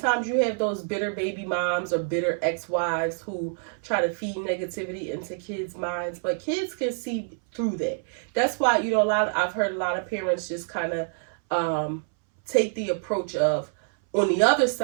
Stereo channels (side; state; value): left; silent; 61 dB below the other